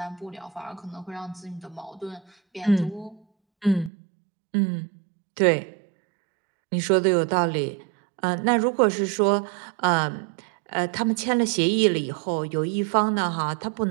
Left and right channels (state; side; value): drops out; left; at 3.9 s